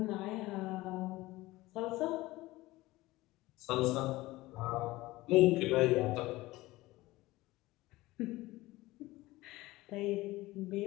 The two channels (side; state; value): right; quieter; 18.9 dB